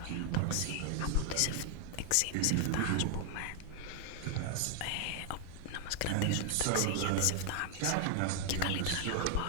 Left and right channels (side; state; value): both; different; correlation 0.00